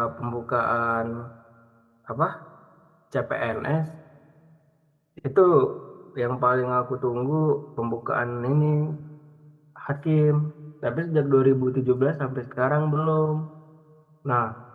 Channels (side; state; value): both; identical; correlation 1.00